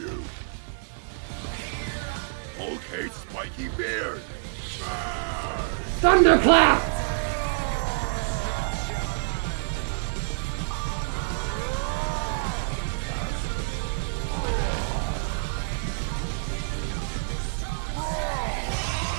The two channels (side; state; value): left; silent; digital silence